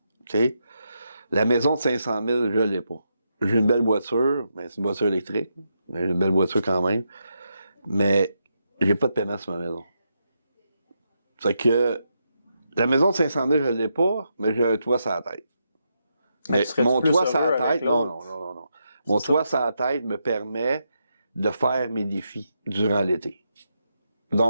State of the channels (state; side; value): inverted; both; correlation -0.83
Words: OK? La maison de 500 000, je l'ai pas. J'ai une belle voiture, mais c'est une voiture électrique. Mais j'ai une belle voiture quand même. Mais j'ai pas de paiement sur ma maison. C'est que la maison de 500 000, je l'ai pas, mais j'ai un toit sur la tête. Mais mon toit sur la tête, non. Mon toit sur la tête me permet de faire mes défis durant l'été.